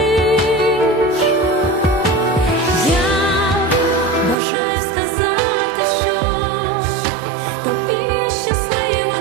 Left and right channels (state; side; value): drops out; left; at 4.4 s